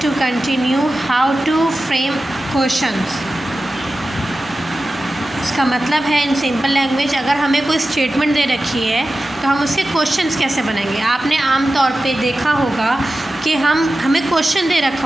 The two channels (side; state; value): both; normal; correlation 0.94